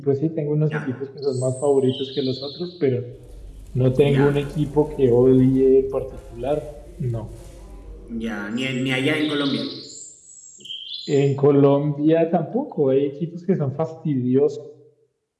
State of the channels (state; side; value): identical; both; correlation 1.00